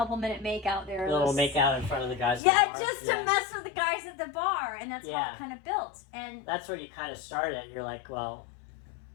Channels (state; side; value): drops out; right; at 2.4 s